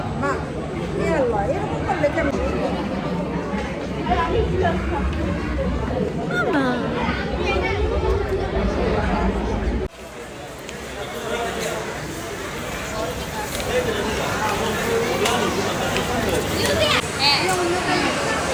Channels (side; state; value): both; identical; correlation 1.00